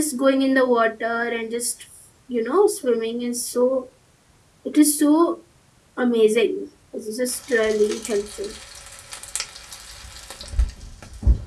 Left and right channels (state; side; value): identical; both; correlation 1.00